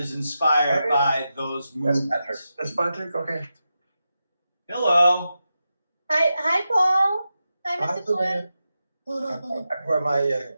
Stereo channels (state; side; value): inverted; both; correlation -0.90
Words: inspired by those movements. That's Patrick, okay. Hello. Hi, Paul. Hi, Mr. Twin. We're my